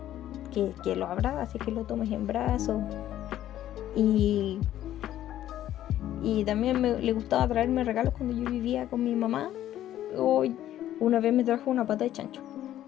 que lo abraces, que lo tomes en brazos. Y también le gustaba traerme regalos cuando yo vivía con mi mamá. Hoy una vez me trajo una pata de chancho,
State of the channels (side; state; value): right; quieter; 12.5 dB